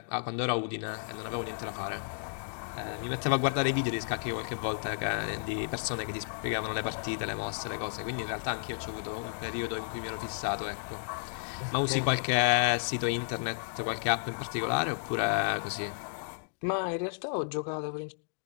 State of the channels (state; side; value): silent; right; digital silence